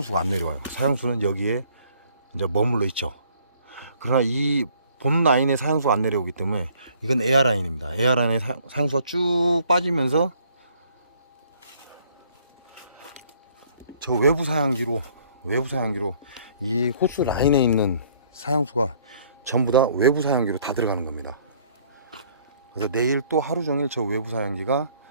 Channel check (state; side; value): inverted; both; correlation -0.61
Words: 안 내려와요. 사양수는 여기에 이제 머물러 있죠. 그러나 이 본 라인에 사양수가 안 내려오기 때문에 이건 에어 라인입니다. 에어 라인에 사양수가 쭉 빠지면서 저 외부 사양기로 이 호스 라인에 있는 사양수가 전부 다 외부 사양기로 다 들어가는 겁니다. 그래서 내일 또 하루 종일 저 외부 사양기가